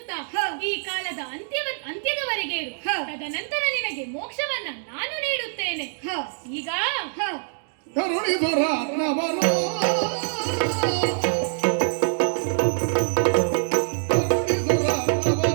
ಈ ಕಾಲದ ಅಂತ್ಯದವರೆಗೆ ಇರು. ತದನಂತರ ನಿನಗೆ ಮೋಕ್ಷವನ್ನ ನಾನು ನೀಡುತ್ತೇನೆ. ಈಗ ಕರುಣಿಸುರ ನವನೋ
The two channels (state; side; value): silent; left; digital silence